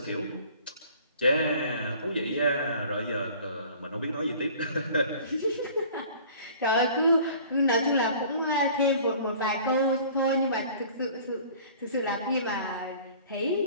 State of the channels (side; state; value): both; inverted; correlation -0.48